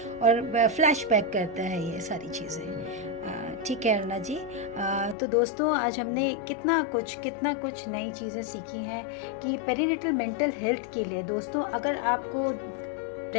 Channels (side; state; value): right; drops out; at 5.2 s